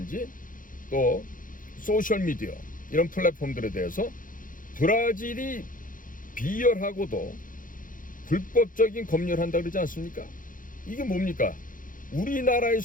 또 소셜미디어 이런 플랫폼들에 대해서 브라질이 비열하고도 불법적인 검열을 한다 그러지 않습니까? 이게 뭡니까?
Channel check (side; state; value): right; late; 0.39 ms